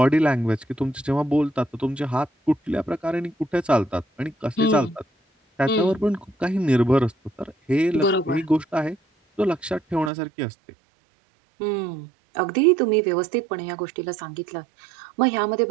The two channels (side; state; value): left; drops out; at 10.1 s